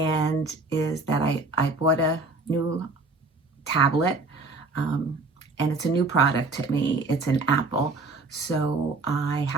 that I bought a new tablet. And it's a new product to me. It's an Apple, so I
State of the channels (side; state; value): left; quieter; 3.5 dB